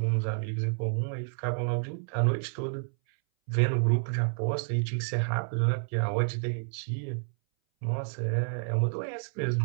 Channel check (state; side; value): silent; left; 58 dB below the other